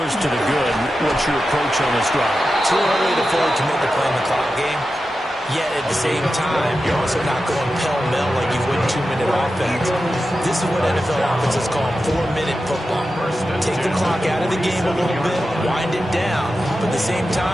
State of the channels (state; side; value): normal; both; correlation 0.91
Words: to the good. What's your approach on this drive? Too early to afford to make the play in the clock game. Yet at the same time, you're also not going pell-mell like you would 2-minute offense. This is what NFL offenses call 4-minute football. Take the clock out of the game a little bit, wind it down, but at the same